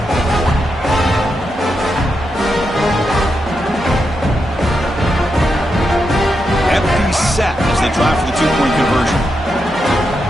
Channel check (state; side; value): normal; both; correlation 0.85